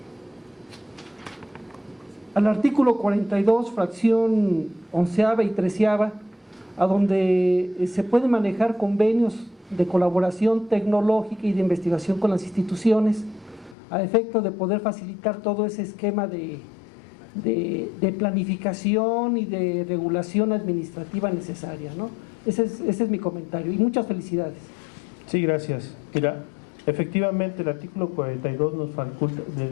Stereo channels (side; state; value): right; drops out; at 13.8 s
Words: al artículo 42, fracción 11ª y 13ª, a donde se pueden manejar convenios de colaboración tecnológica y de investigación con las instituciones, a efecto de poder facilitar todo ese esquema de planificación y de regulación administrativa necesaria, ¿no? Ese es mi comentario y muchas felicidades. Sí, gracias. Mira, efectivamente el artículo 42 de